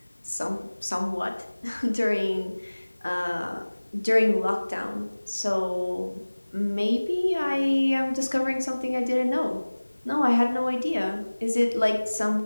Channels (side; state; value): both; inverted; correlation -1.00